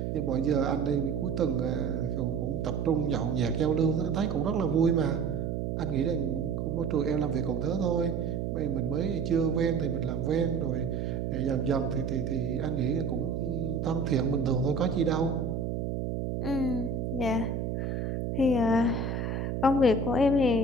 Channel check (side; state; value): right; noise; hum, 2 dB below the sound